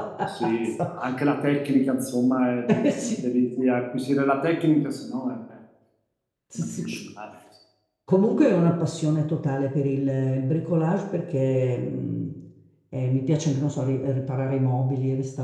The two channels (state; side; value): identical; both; correlation 1.00